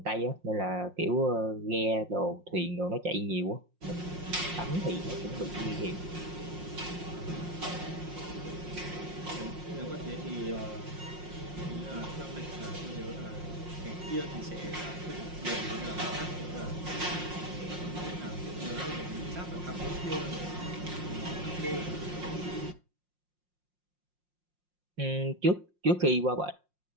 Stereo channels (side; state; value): left; late; 5.6 ms